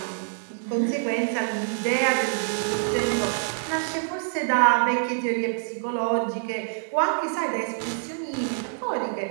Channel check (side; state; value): left; silent; digital silence